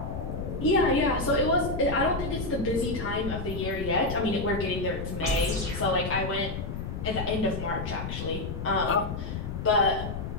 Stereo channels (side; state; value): left; noise; rumble, 5 dB below the sound